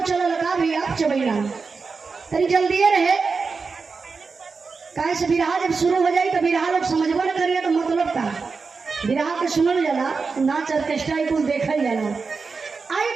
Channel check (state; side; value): quieter; left; 4.7 dB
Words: लगा भैया चबैना तरी जल्दी रहे। काहे से बिरहा जब शुरू हो जाए तो बिरहा लोग समझबो न करिए तो मतलब का बिरहा के सुनल जाला, नाच ऑर्केस्ट्रा कुल देखल जाला। आई